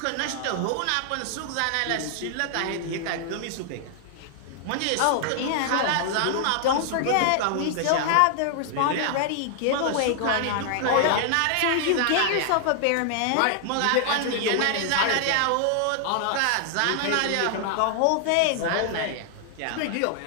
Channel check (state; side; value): different; both; correlation -0.01